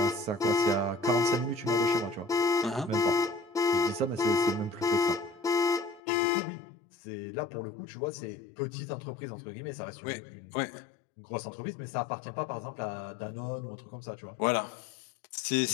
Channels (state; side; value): drops out; right; at 6.0 s